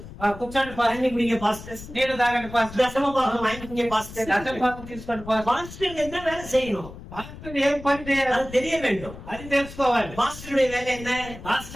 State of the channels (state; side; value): noise; left; rumble, 14 dB below the sound